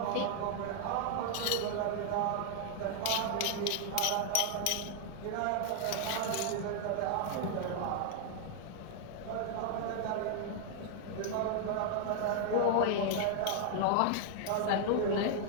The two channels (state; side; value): different; both; correlation 0.00